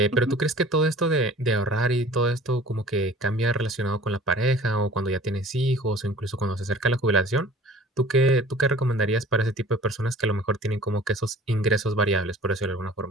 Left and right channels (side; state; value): both; normal; correlation 0.47